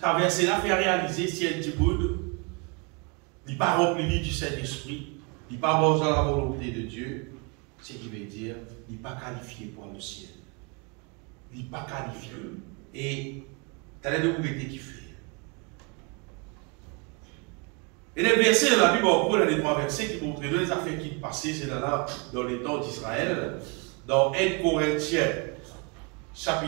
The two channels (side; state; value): left; quieter; 32.2 dB